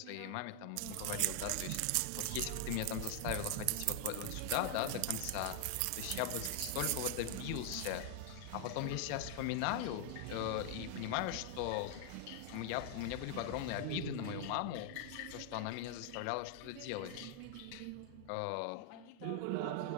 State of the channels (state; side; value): different; both; correlation 0.00